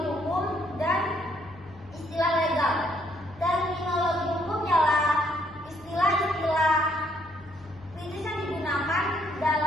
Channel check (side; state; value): both; normal; correlation 0.69